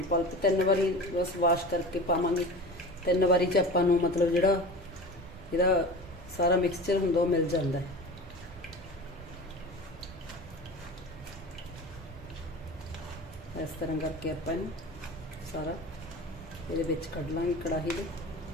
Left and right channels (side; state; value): right; noise; rumble, 20 dB below the sound